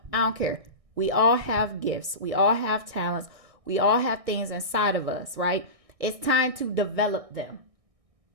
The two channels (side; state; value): left; late; 1.6 ms